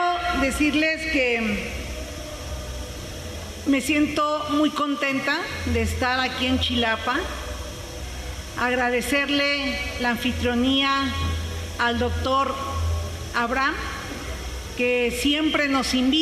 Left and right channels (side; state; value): both; identical; correlation 1.00